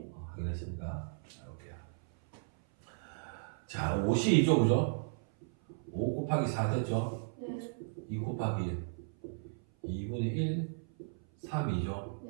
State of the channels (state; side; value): silent; left; 54 dB below the other